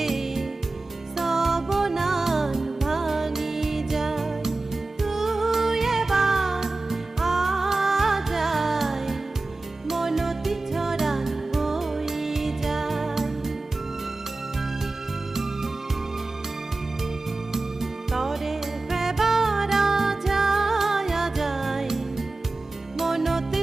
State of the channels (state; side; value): quieter; left; 3.2 dB